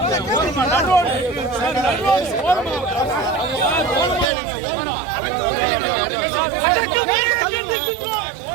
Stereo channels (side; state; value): left; drops out; at 4.3 s